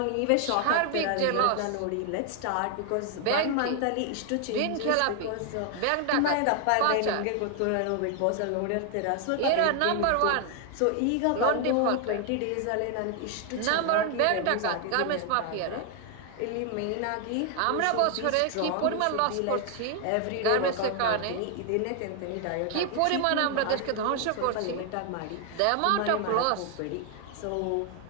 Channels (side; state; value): both; different; correlation 0.00